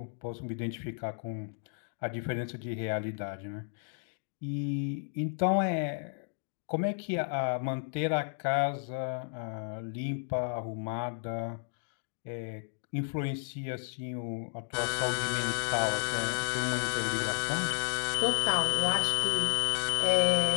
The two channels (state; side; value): silent; right; digital silence